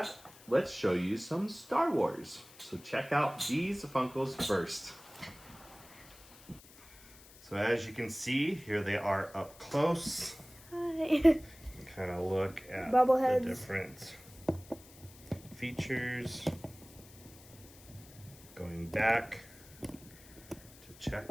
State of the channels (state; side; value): noise; left; hiss, 21 dB below the sound